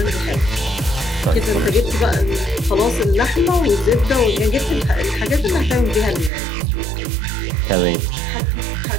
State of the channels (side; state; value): left; drops out; at 6.3 s